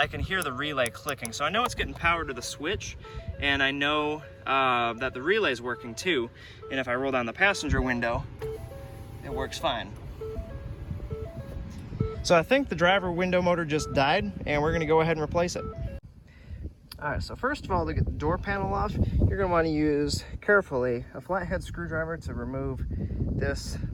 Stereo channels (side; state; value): both; identical; correlation 1.00